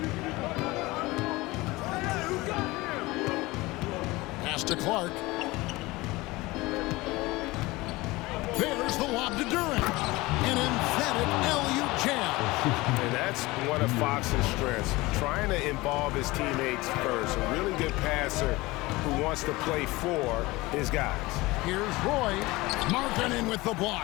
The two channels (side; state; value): right; quieter; 21.0 dB